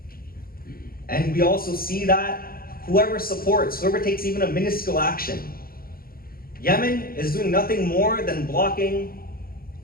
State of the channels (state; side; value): late; right; 0.43 ms